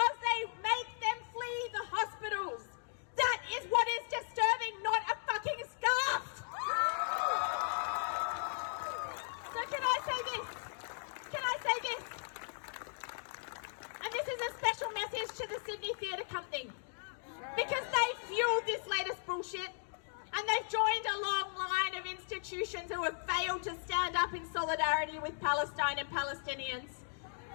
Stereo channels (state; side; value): silent; right; digital silence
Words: they make them flee the hospitals. That is what is disturbing, not a fucking scarf. bullshit. And they've joined a long line of institutions who have failed to stand up in solidarity with Palestine and Palestinians.